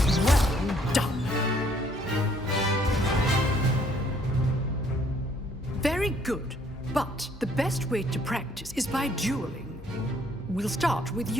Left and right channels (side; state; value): both; normal; correlation 0.64